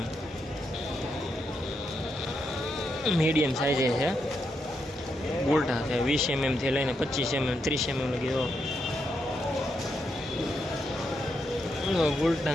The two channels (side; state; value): both; normal; correlation 0.81